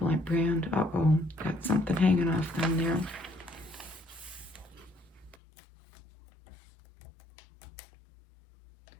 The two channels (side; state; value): right; drops out; at 5.4 s